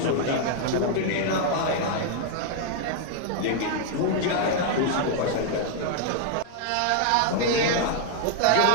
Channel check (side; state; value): both; different; correlation 0.00